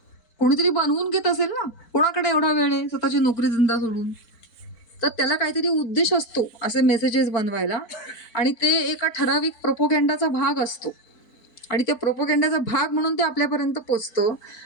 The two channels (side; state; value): right; late; 4.4 ms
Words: कोणीतरी बनवून घेत असेल ना. कोणाकडे एवढा वेळ आहे स्वतःची नोकरी धंदा सोडून? तर त्याला काहीतरी उद्देश असतो असे मेसेजेस बनवायला, आणि ते एका ठराविक प्रोपोगँडाचा भाग असतो, आणि त्या प्रोपोगँडाचा भाग म्हणून ते आपल्यापर्यंत पोचतं.